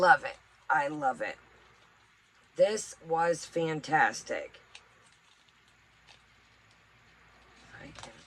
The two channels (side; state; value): both; identical; correlation 1.00